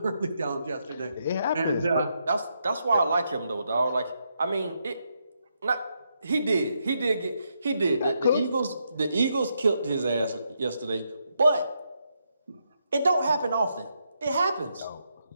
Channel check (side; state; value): both; inverted; correlation -0.80